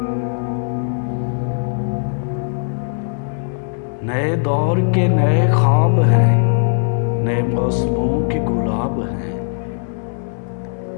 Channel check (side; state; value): right; silent; 67 dB below the other